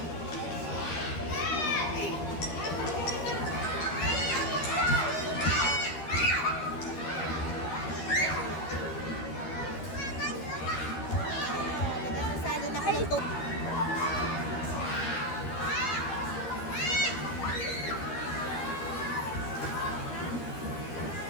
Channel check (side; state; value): right; late; 13 ms